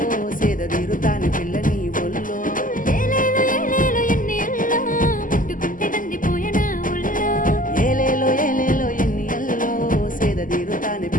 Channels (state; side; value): late; right; 0.39 ms